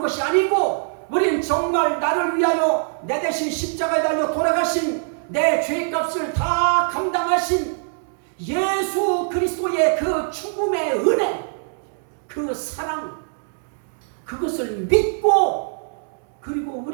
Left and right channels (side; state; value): left; silent; 64 dB below the other